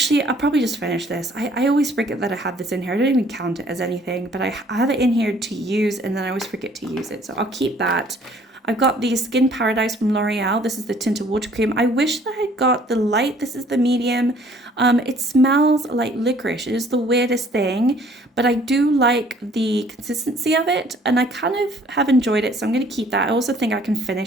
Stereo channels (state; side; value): normal; both; correlation 0.58